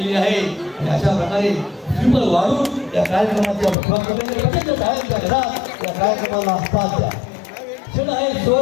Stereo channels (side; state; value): right; drops out; at 3.8 s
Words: आहे आणि अशा प्रकारे दीप वाढून या कार्यक्रमाची आपण सुरुवात करण्याची प्रत्येक साहेबच्या घरात या कार्यक्रमाला असतात द्या. क्षण आहे